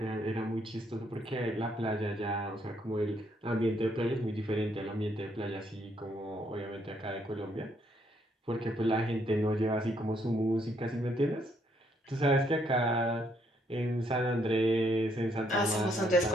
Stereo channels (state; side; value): normal; both; correlation 0.71